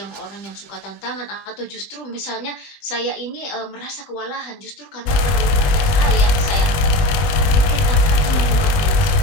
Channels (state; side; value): late; right; 21 ms